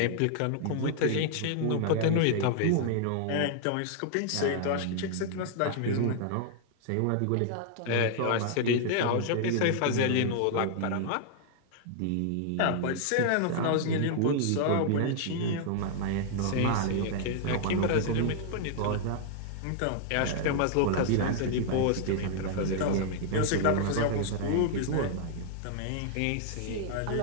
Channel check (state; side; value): different; both; correlation -0.01